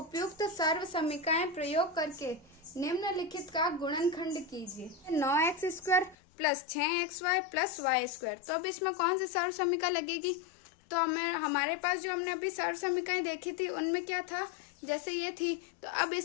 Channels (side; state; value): right; drops out; at 6.2 s